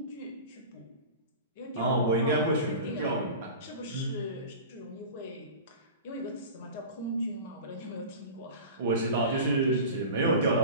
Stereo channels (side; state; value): both; inverted; correlation -0.34